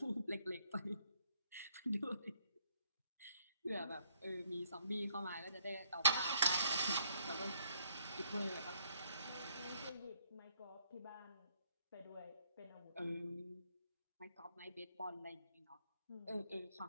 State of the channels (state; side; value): inverted; both; correlation -0.70